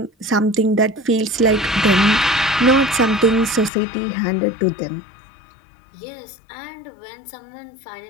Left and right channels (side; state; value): right; drops out; at 3.7 s